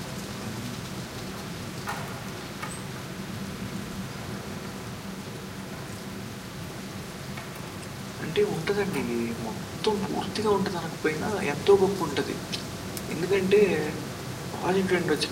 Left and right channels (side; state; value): both; identical; correlation 1.00